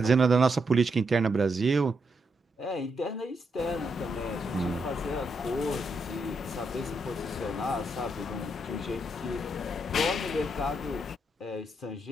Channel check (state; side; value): normal; both; correlation 0.80